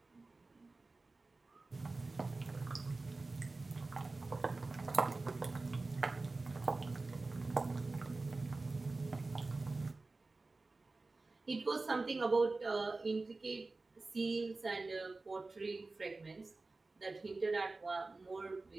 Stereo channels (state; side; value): quieter; left; 3.5 dB